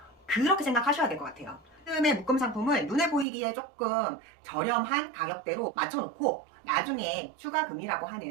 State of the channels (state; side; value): drops out; left; at 3.2 s